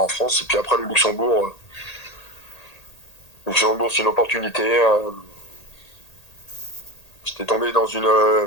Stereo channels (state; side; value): late; right; 1.8 ms